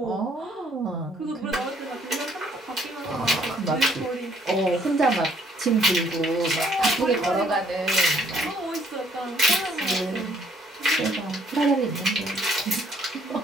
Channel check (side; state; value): both; normal; correlation 0.65